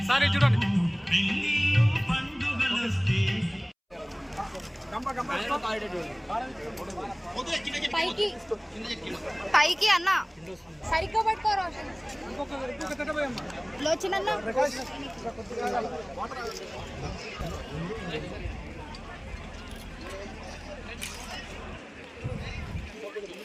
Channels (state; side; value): identical; both; correlation 1.00